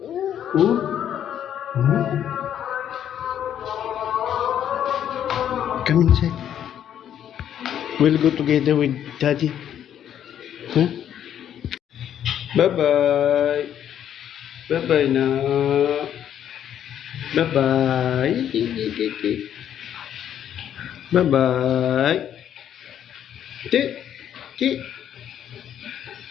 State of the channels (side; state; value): right; quieter; 10.0 dB